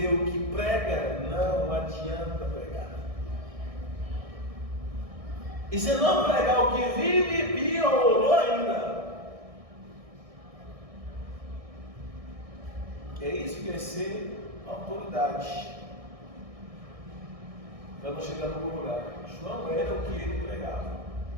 o que prega, não adianta pregar. E se não pregar o que vive, piorou ainda. É isso que é ser autoridade. Para não chegar no lugar. João era o que ele pregava.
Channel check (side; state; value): left; late; 1.6 ms